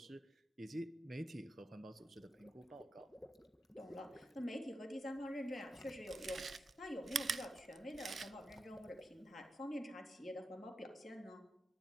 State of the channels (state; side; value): normal; both; correlation 0.89